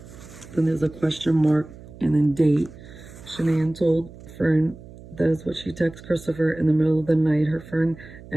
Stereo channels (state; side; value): noise; right; hum, 18 dB below the sound